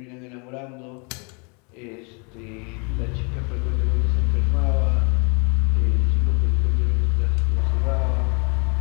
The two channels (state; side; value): quieter; right; 33.8 dB